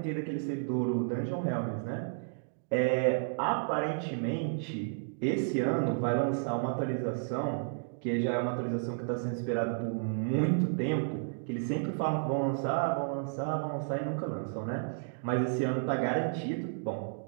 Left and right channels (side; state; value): left; silent; digital silence